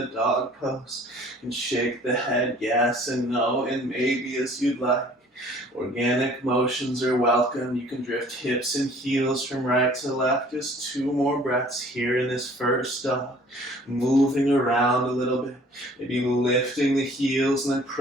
dog pose. And shake the head yes and no and maybe as you'd like. Organic motions are welcome. You can drift hips and heels from right to left. Just 2 more breaths here in this first dog. Moving around a little bit. Maybe lifting the heels and then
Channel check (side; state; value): both; normal; correlation 0.53